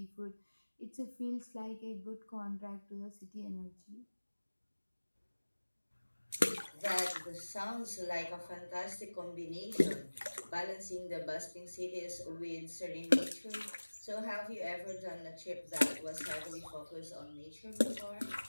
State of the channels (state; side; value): inverted; both; correlation -1.00